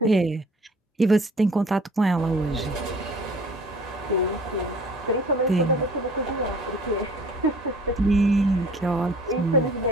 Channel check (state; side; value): normal; both; correlation 0.49